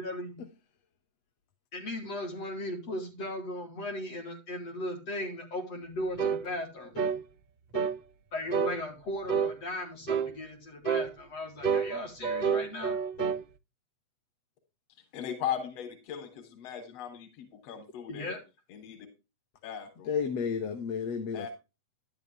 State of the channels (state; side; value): late; right; 8.0 ms